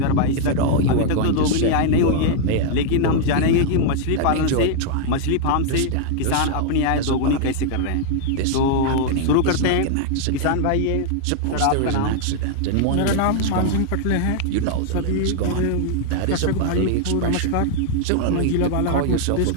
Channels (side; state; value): both; different; correlation 0.00